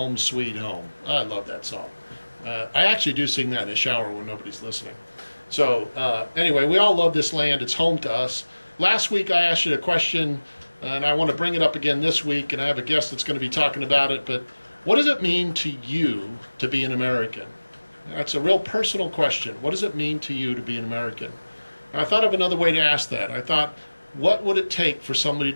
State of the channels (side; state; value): both; inverted; correlation -1.00